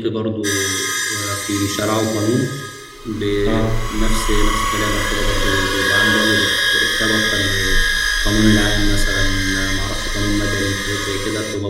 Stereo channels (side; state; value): both; identical; correlation 1.00